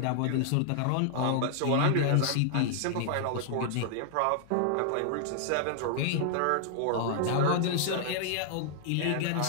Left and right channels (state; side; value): different; both; correlation -0.01